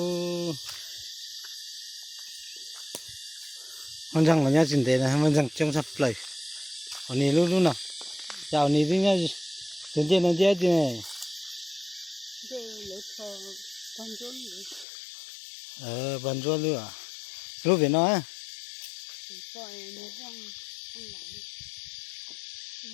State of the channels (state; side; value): drops out; right; at 14.9 s